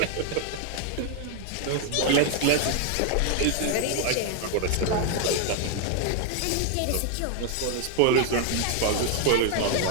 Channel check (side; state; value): both; different; correlation 0.00